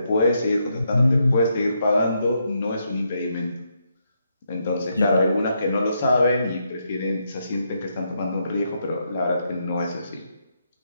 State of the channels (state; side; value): inverted; both; correlation -0.79